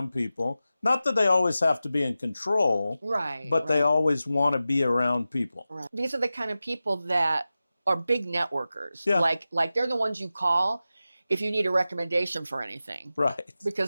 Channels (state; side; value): inverted; both; correlation -0.94